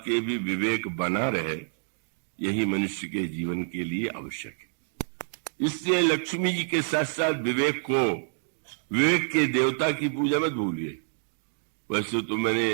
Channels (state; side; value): silent; left; digital silence